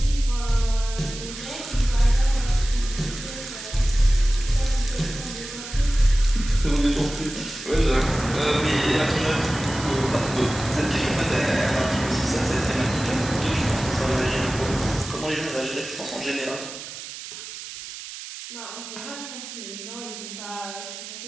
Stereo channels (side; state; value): right; noise; hiss, 11 dB below the sound